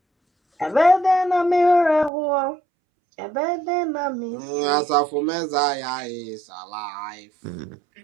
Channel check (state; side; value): drops out; left; at 2.1 s